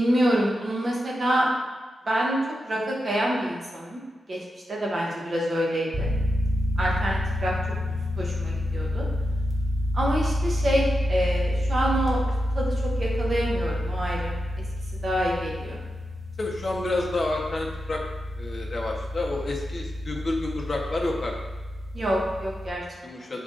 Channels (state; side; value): normal; both; correlation 0.88